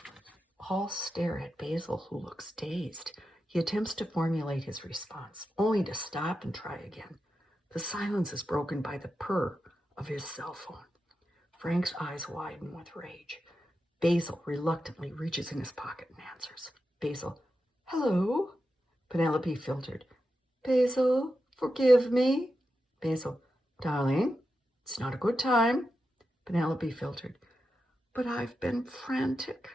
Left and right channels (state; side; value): normal; both; correlation 0.89